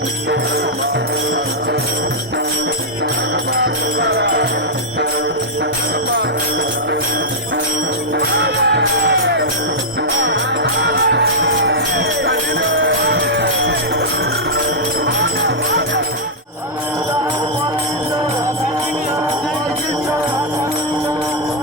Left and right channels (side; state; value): both; normal; correlation -0.07